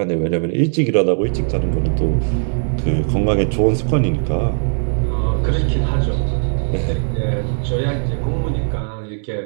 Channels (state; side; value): silent; left; 67 dB below the other